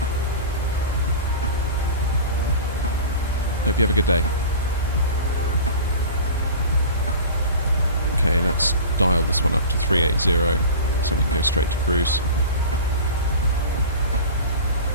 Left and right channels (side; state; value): both; inverted; correlation -0.35